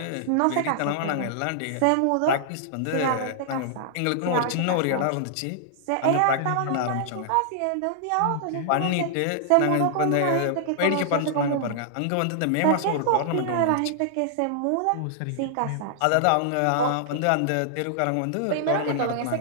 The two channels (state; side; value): different; both; correlation -0.01